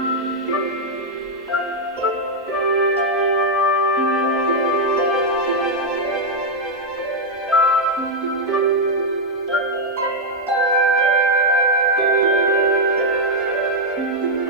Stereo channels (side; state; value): both; normal; correlation 0.00